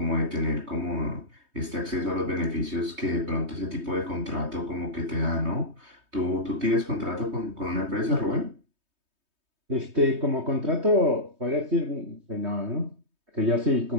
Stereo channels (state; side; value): late; left; 3.2 ms